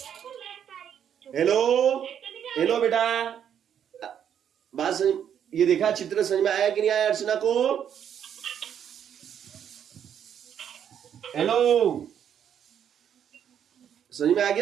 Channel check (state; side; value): quieter; left; 8.9 dB